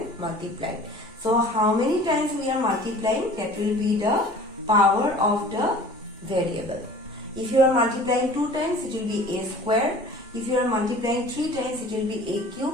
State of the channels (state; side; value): normal; both; correlation 0.45